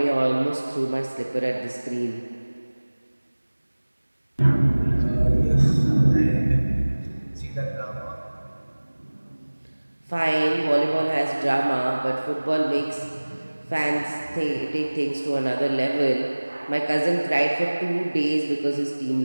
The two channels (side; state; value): both; inverted; correlation -1.00